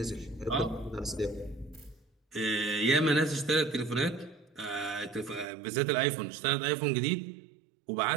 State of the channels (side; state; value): left; drops out; at 5.5 s